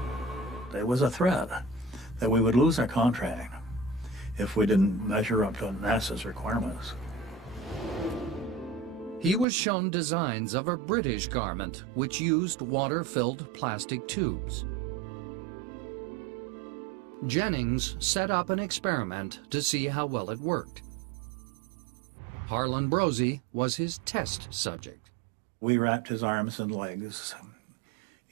There was a threat that we would lose our contract if we didn't measure up to NASA's requirements. He was shown designs of a British garment which used water-filled plastic tubes. Jennings set up an experiment to see how well it worked. Harlan Brosey was his test subject. We wrapped his arms and legs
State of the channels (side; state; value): left; drops out; at 9.5 s